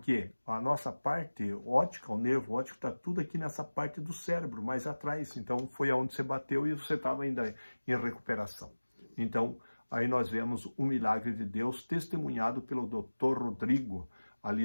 a nossa parte óptica, o nervo óptico, está tudo aqui nessa parte do cérebro, mais atrás. Então, foi aonde você bateu e você estava ainda em recuperação. Então, aí nós vemos o milagre de Deus testemunhado pelo Dr. Rodrigo,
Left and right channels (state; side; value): inverted; both; correlation -1.00